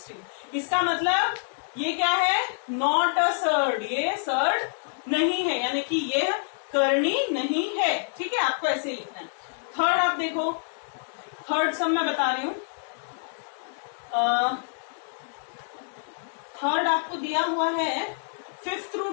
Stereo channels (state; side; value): silent; right; digital silence